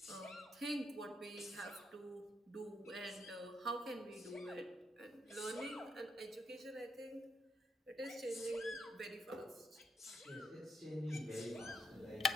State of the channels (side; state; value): both; normal; correlation 0.76